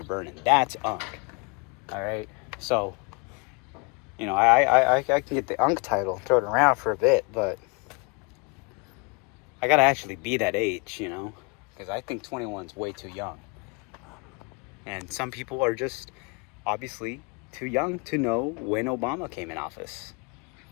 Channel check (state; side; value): quieter; right; 30.5 dB